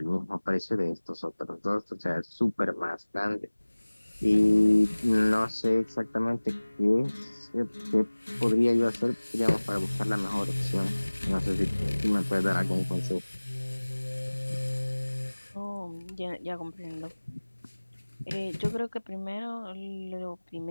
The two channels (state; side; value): inverted; both; correlation -1.00